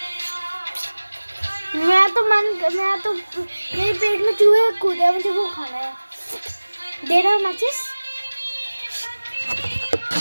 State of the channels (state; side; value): inverted; both; correlation -1.00